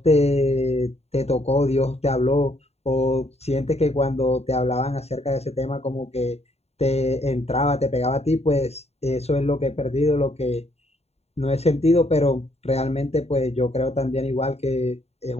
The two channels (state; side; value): late; right; 0.30 ms